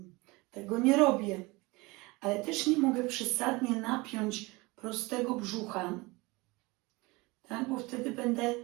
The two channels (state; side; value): quieter; left; 23.8 dB